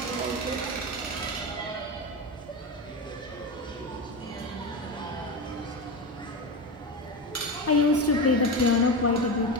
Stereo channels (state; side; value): normal; both; correlation 0.19